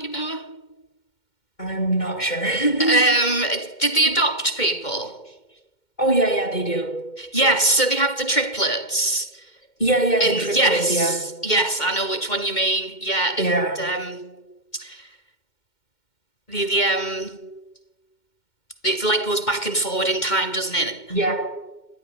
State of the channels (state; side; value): late; right; 2.1 ms